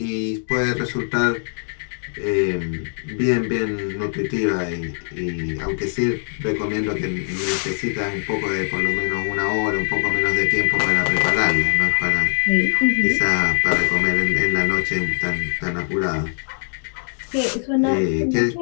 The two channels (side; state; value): right; silent; digital silence